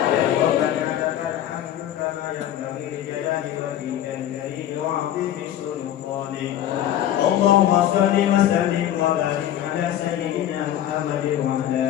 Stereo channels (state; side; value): quieter; right; 11.7 dB